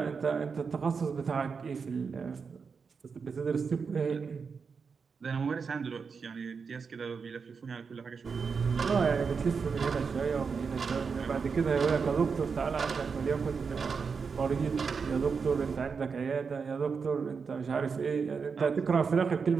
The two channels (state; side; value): quieter; left; 5.5 dB